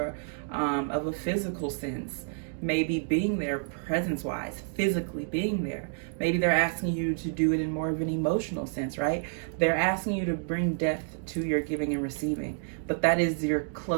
of a physical sense. Maybe being there presence-wise, physically being there. Maybe they're asking you to do it in more of an emotional sense, right? They're asking you to bring depth to your giving and receiving. But that is your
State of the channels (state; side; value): silent; left; digital silence